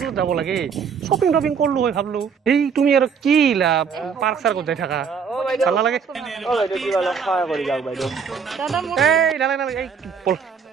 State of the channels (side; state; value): left; quieter; 6.4 dB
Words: যাব লাগে শ্বপিং কৰিলো হয় ভাবলো এই তুমি আৰু কি ইলা পাৰ্ক চাৰ্কত যাই থাকা ভাল লাগে সহায় কৰি যাওক বাইদেউ এই নালাগে এই